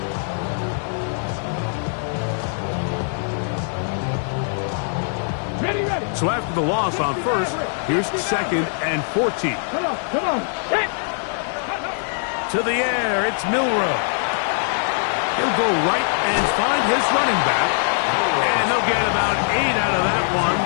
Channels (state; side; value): silent; right; digital silence